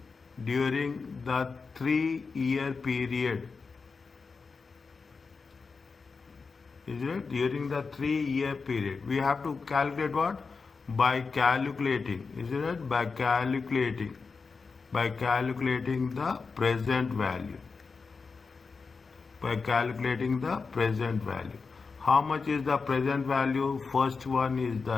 the 3-year period. Is it? During the 3-year period. We have to calculate what? By calculating. Is it? By calculating the present value. By calculating the present value. How much is the present value? First one is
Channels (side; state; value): right; quieter; 4.7 dB